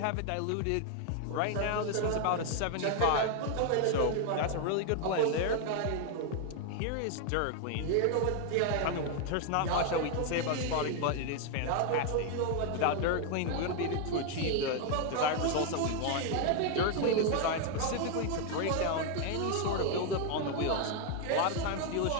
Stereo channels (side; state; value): both; different; correlation 0.01